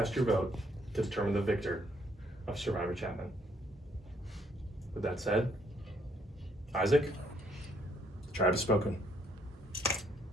your vote to determine the victor of Survivor Chapman. With that said, Isaac, the tribe has spoken.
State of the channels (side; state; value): both; normal; correlation 0.68